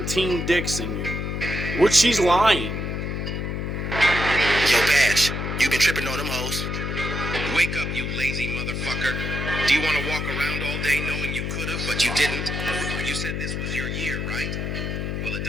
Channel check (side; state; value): left; noise; hum, 3 dB below the sound